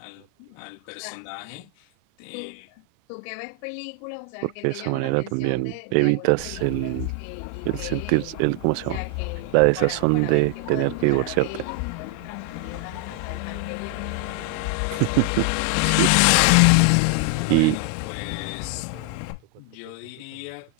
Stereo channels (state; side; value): different; both; correlation 0.00